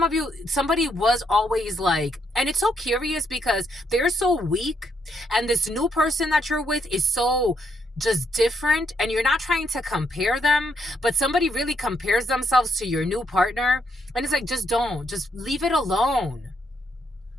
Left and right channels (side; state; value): both; normal; correlation 0.75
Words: of you, somebody was always like, and it's so curious because they're so weak and this new person that you're with is so just different and you're not trying to compare them, but somebody really compares themselves to your new partner and it's like, just don't, just leave it alone.